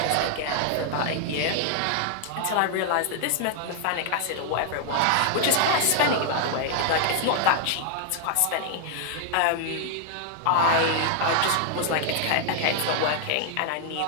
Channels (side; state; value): both; different; correlation 0.00